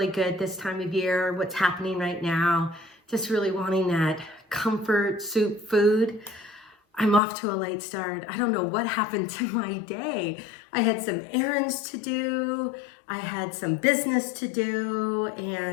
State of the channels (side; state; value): right; drops out; at 7.2 s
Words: good this time of year, what's happening right now. Just really wanting that comfort soup food. I'm off to a late start. I don't know what happened to my day. I had some errands to do, I had some business to do,